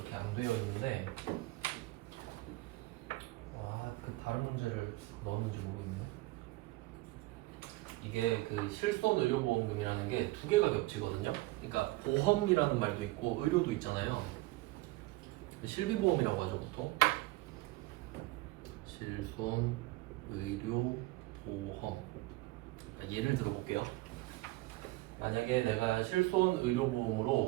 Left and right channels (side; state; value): left; quieter; 20.3 dB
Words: 안 되어 있는데 그 다른 문제를 넣었는지 모르겠네요. 이게 그 실손 의료보험금이라는 게 두 개가 겹치거든요. 그러니까 보험이라는 말도 있고 의료도 있잖아요. 실비보험이라고 하죠 보통. 실손 의료보험. 그러니까 예를 들어볼게요. 만약에 내가 실손